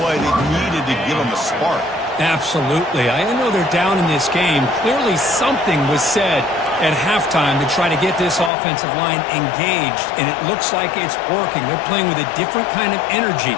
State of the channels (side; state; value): right; drops out; at 8.5 s